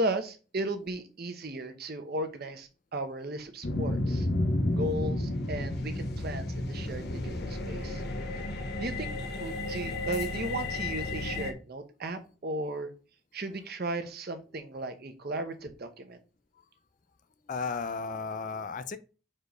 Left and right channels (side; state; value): both; normal; correlation 0.42